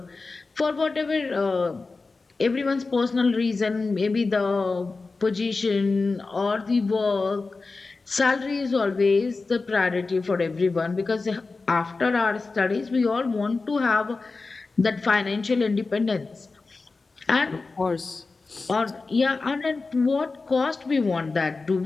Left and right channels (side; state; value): right; quieter; 3.9 dB